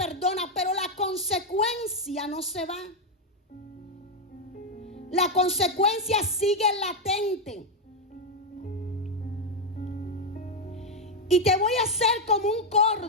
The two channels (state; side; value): normal; both; correlation 0.03